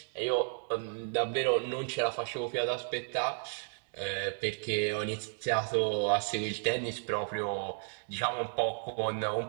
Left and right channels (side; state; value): left; silent; 56 dB below the other